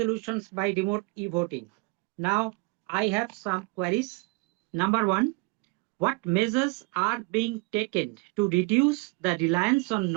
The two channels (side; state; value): left; quieter; 29.3 dB